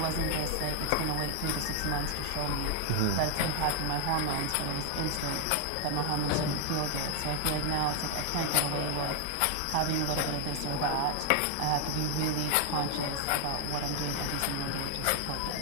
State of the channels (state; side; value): different; both; correlation 0.00